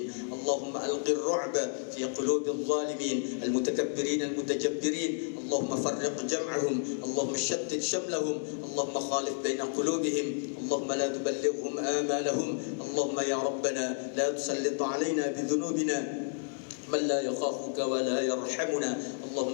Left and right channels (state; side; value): silent; right; 55 dB below the other